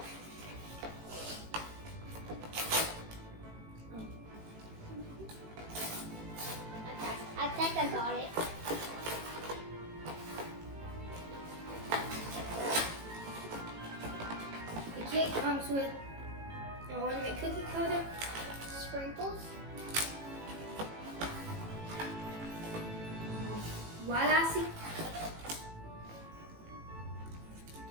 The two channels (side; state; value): left; late; 18 ms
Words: I think I got it. The kit comes with an ornament cookie coater, Sprinkles. white icing,